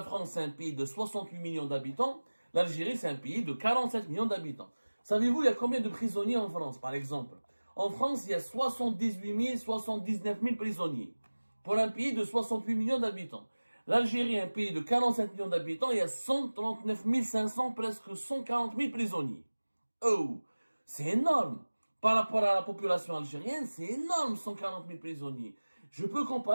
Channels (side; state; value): both; inverted; correlation -1.00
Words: France, c'est un pays de 68 millions d'habitants. L'Algérie, c'est un pays de 47 millions d'habitants. Savez-vous, il y a combien de prisonniers en France, par exemple? En France, il y a 78 000, 79 000 prisonniers. Pour un pays de 68 millions d'habitants. L'Algérie, un pays de 47 millions d'habitants, il y a 139 500, presque 140 000 prisonniers. Oh, c'est énorme. Par rapport à la population algérienne, c'est énorme, 140 000 prisonniers. Je peux